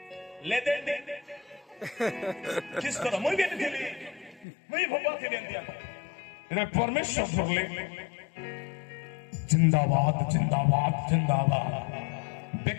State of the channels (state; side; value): drops out; right; at 4.5 s